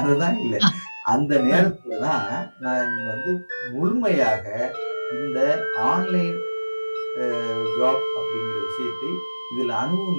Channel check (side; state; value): both; inverted; correlation -1.00